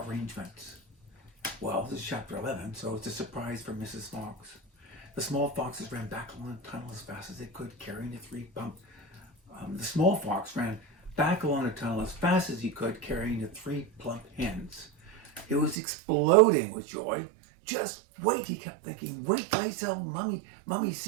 Well, this is chapter 11, so it's a surprise for Mrs. Fox. The small foxes ran back along the tunnel as fast as they could, carrying the 3 plump. The small fox ran back along the tunnel as fast as he could, carrying the 3 plump hens. It was exploding with joy. Just wait, he kept thinking. Wait till I tell Mummy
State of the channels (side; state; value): left; drops out; at 15.8 s